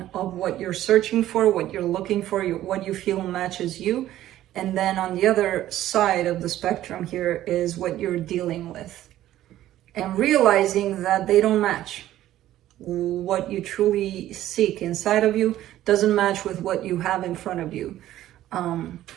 of what you're searching for, what you're looking for, what you feel matches you. And then on the other side of the spectrum here is what you're dealing with. And realizing that they don't match. What you truly seek inside of you doesn't match with what you have in front of you.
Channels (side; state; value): left; quieter; 13.5 dB